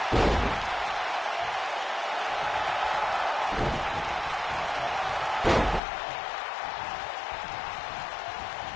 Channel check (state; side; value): drops out; right; at 5.8 s